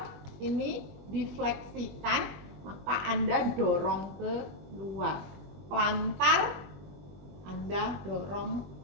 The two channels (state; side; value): late; left; 20 ms